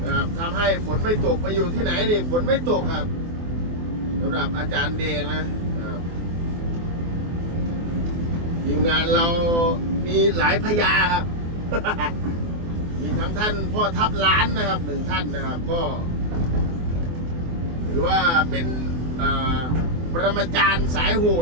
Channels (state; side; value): late; left; 24 ms